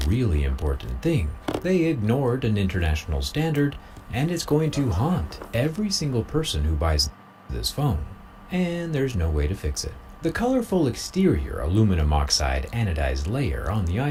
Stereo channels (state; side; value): identical; both; correlation 1.00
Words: really important thing. They ignored an international standard, and it's going to haunt every single person who buys this phone. And there's no way to fix it. The colorful exterior aluminum oxide anodized layer on the